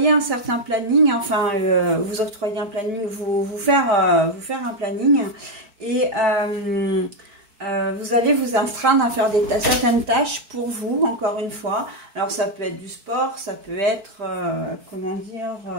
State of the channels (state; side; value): late; left; 4.6 ms